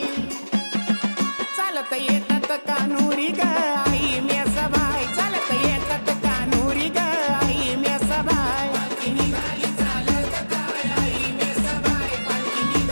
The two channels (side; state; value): both; inverted; correlation -1.00